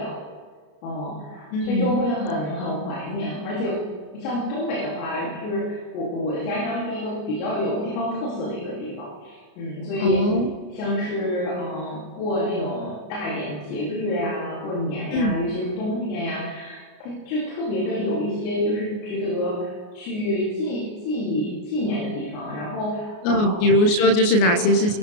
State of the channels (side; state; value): right; late; 33 ms